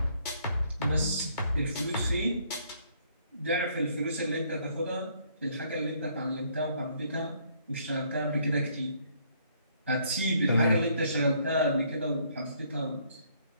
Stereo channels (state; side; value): inverted; both; correlation -0.66